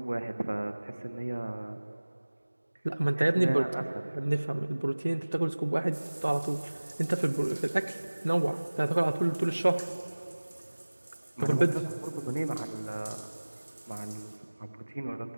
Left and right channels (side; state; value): both; inverted; correlation -1.00